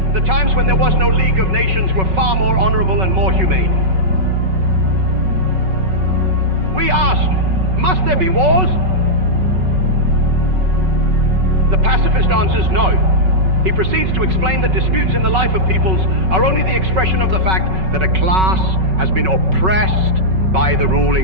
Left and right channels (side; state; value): left; late; 5.3 ms